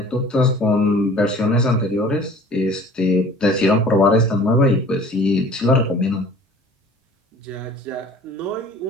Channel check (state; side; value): normal; both; correlation 0.48